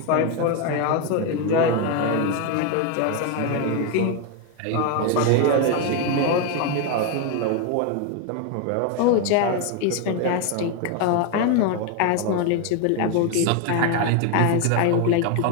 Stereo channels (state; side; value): different; both; correlation 0.01